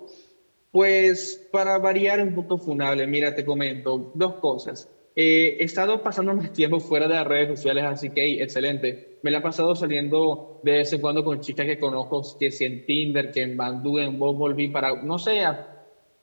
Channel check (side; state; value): both; inverted; correlation -1.00